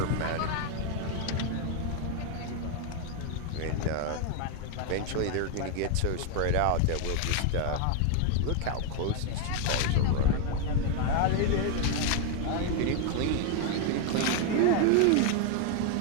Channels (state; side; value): different; both; correlation 0.01